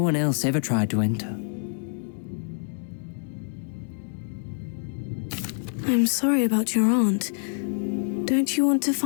one else ever tried to enter. I'm sorry about your aunt. Don't you want to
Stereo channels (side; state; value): right; silent; digital silence